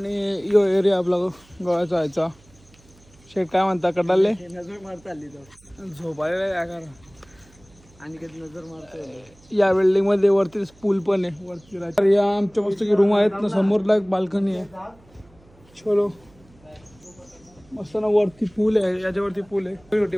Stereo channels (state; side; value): noise; right; hum, 28 dB below the sound